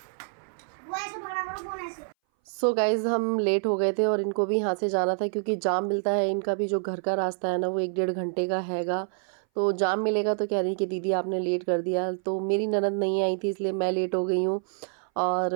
सो गाइज, हम लेट हो गए थे और इनको भी यहाँ से जाना था क्योंकि जाम मिलता है। इनका भी जो घर का रास्ता है ना वो 1 डेढ़ घंटे का हैगा। तो जाम मिलेगा तो कह रही कि दीदी आपने लेट कर दिया। तो मेरी ननद नहीं आई थी इसलिए मैं लेट हो गई हूँ। और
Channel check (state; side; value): silent; left; 59 dB below the other